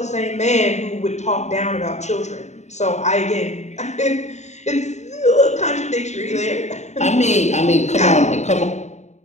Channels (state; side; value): late; right; 0.33 ms